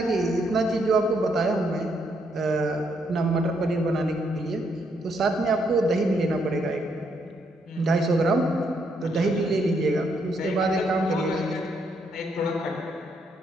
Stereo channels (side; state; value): both; normal; correlation 0.75